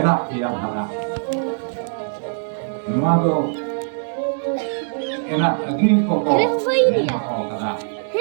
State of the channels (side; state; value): left; silent; digital silence